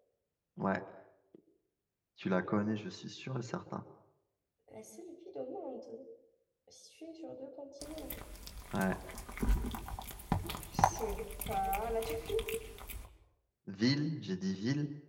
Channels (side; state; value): both; identical; correlation 1.00